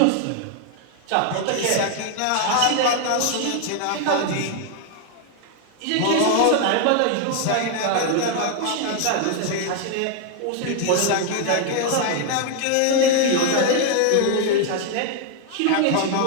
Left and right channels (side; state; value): both; different; correlation 0.00